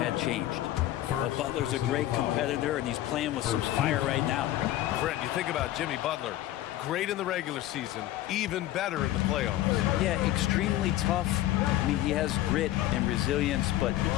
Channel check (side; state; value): right; quieter; 14.2 dB